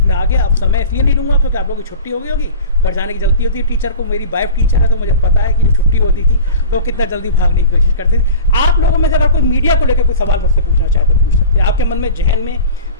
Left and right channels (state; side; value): inverted; both; correlation -0.37